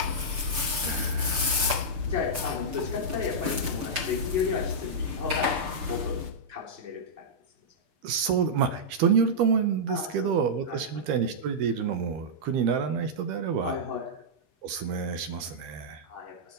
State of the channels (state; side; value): late; left; 6.7 ms